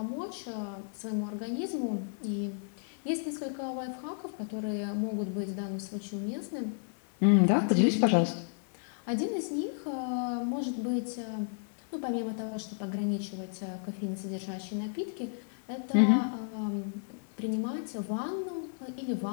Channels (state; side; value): silent; right; digital silence